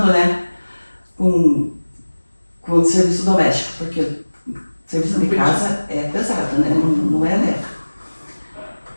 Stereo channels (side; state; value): both; inverted; correlation -1.00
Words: né, com o serviço doméstico, porque o serviço de casa é pesado, né, não é leve.